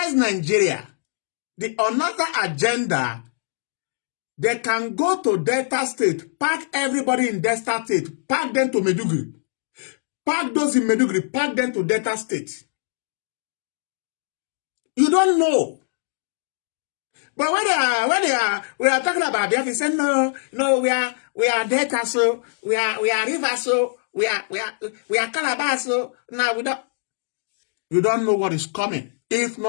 Nigeria, the another agenda, they can go to Delta State, pack everybody in Delta State, pack them to Maiduguri, pack those in Maiduguri, pack them to Delta State. You don't know But we are talking about Biafra, he said, no, we are Delta, so we are River, so we are Calabar, so now you don't know what is coming. If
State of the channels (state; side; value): silent; right; digital silence